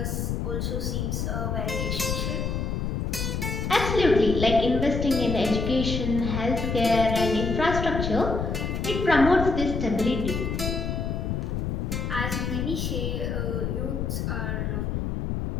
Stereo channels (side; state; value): left; noise; rumble, 1 dB below the sound